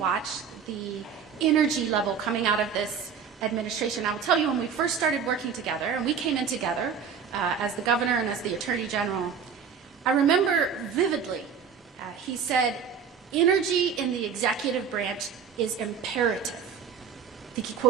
the energy level coming out of this administration. I will tell you, when we first started working together, and we came in together as the governor and as the attorney general, I remember vividly, he said, energy in the executive branch is imperative. I think he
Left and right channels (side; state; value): left; quieter; 6.9 dB